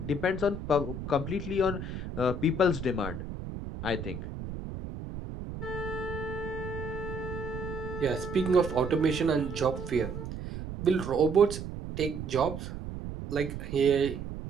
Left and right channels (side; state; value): right; noise; rumble, 8 dB below the sound